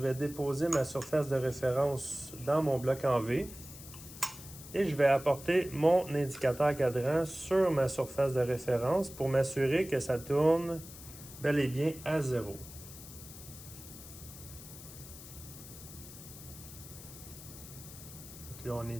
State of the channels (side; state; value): left; noise; hiss, 15 dB below the sound